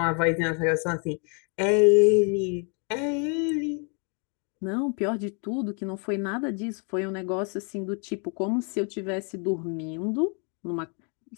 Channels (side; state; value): right; quieter; 38.2 dB